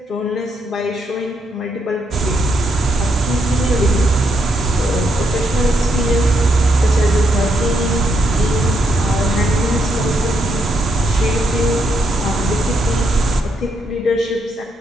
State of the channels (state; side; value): normal; both; correlation 0.78